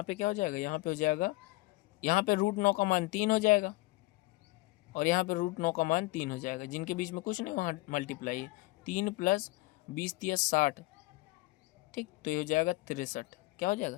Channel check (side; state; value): right; quieter; 21.1 dB